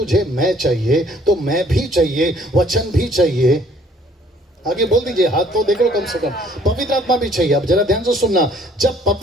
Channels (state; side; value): normal; both; correlation 0.59